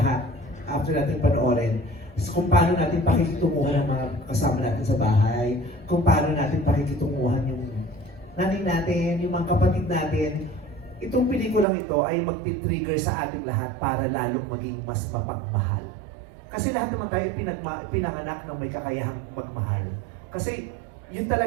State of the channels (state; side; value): drops out; left; at 11.7 s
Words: after natin panoorin. Kung paano natin pakikitunguhan ang mga kasama natin sa bahay, kung paano natin pakikitunguhan yung nanay natin, yung mga kapatid natin. Itong pelikulang ito ay magti-trigger sa ating lahat para lalong maging mas mapagmahal. Kasi lahat naman tayo pinanganak ng may kakayahang magmahal. Kasi yun